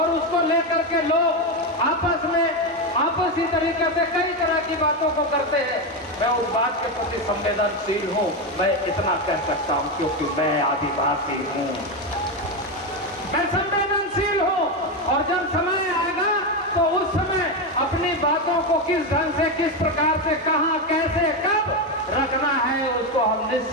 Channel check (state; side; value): normal; both; correlation 0.11